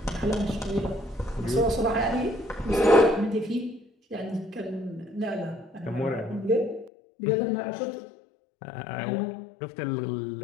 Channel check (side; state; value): right; drops out; at 6.9 s